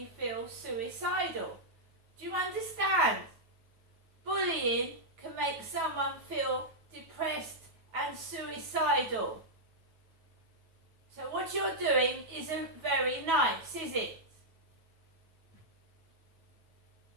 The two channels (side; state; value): left; late; 9.3 ms